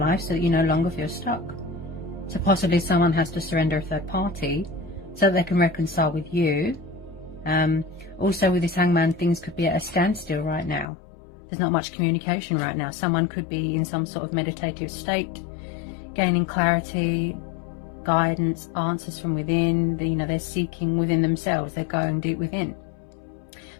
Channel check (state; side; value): drops out; right; at 10.9 s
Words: so that you no longer feel stuck. So possibly someone has to surrender a third party so that they can reconcile with you. Also with this Hangman, things could be at a standstill right now. There's not much communication right now. Someone could be in some sort of meditative state, gaining clarity, guidance, answers from within. They're seeking within themselves. They're going deep within.